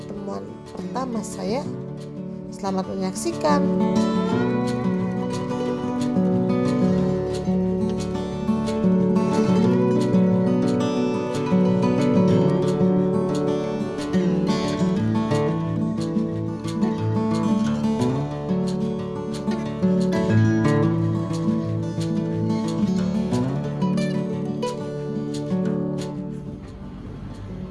pertama saya. Selamat menyaksikan.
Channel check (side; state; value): both; identical; correlation 1.00